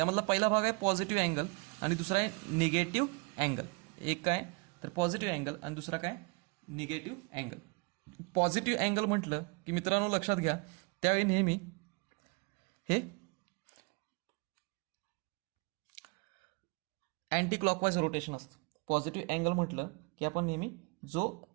पहिला भाग आहे पॉझिटिव्ह अँगल आणि दुसरा आहे निगेटिव्ह अँगल. एक काय तर पॉझिटिव्ह अँगल आणि दुसरा काय निगेटिव्ह अँगल. पॉझिटिव्ह अँगल म्हटलं की मित्रांनो लक्षात घ्या, त्यावेळी नेहमी हे अँटी क्लॉकवाईज रोटेशन असतं. पॉझिटिव्ह अँगल म्हटलं की आपण नेहमी जो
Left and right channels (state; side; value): quieter; left; 30.8 dB